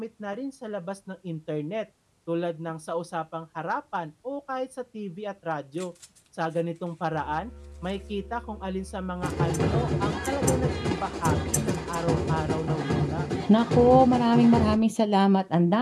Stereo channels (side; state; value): both; identical; correlation 1.00